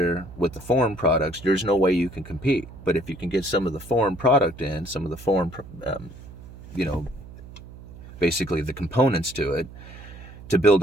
with the foreign products, there's no way you can compete. But if you can get some of the foreign product in, some of the foreign, you know, basically the components to it, to build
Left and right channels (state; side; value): noise; right; hum, 16 dB below the sound